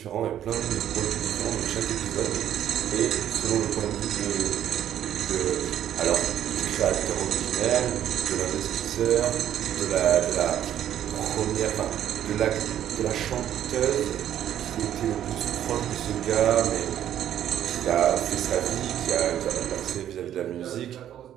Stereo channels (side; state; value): left; quieter; 10.9 dB